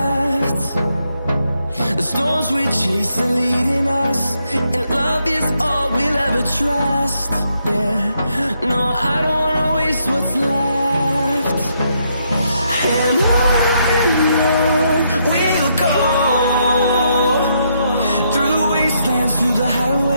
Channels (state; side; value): inverted; both; correlation -0.77